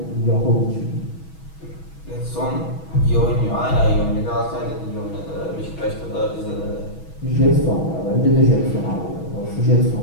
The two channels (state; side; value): late; right; 6.2 ms